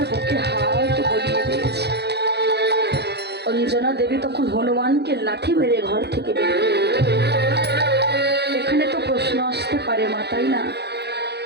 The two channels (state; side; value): late; left; 0.48 ms